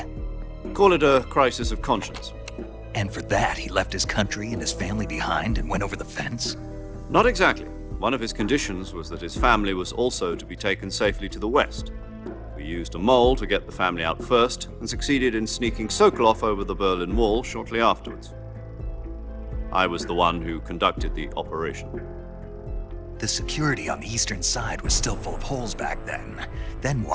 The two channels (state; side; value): identical; both; correlation 1.00